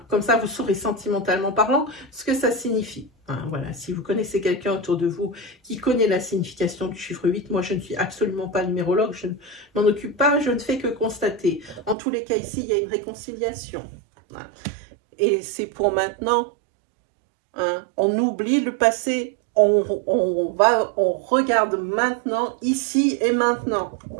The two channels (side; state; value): left; drops out; at 12.0 s